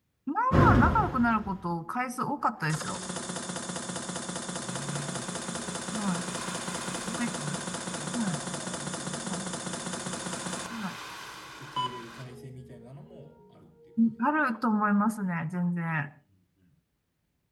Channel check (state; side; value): identical; both; correlation 1.00